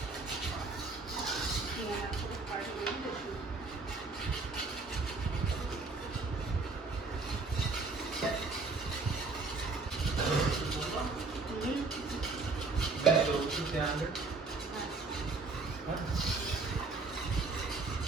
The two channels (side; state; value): left; quieter; 3.9 dB